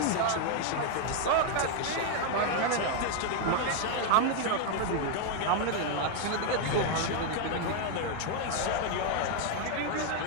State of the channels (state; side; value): different; both; correlation 0.00